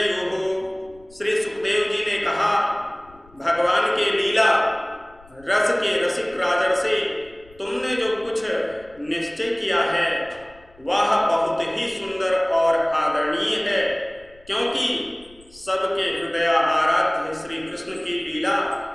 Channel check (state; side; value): noise; left; rumble, 27 dB below the sound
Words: श्री सुखदेव जी ने कहा, भगवान के लीला रस के रसिक राजर्षि, तुमने जो कुछ निश्चय किया है वह बहुत ही सुंदर और आदरणीय है, क्योंकि सबके हृदय आराध्य श्री कृष्ण की लीला